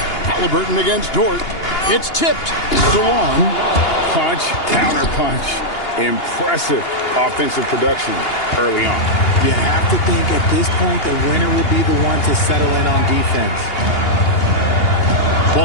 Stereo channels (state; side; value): late; right; 2.8 ms